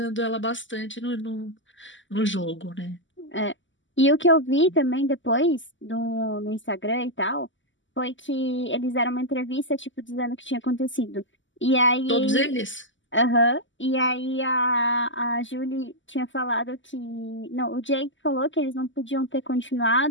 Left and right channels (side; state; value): right; late; 0.55 ms